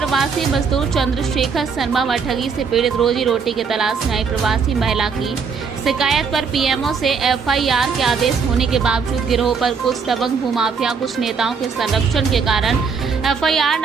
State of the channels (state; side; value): quieter; left; 5.6 dB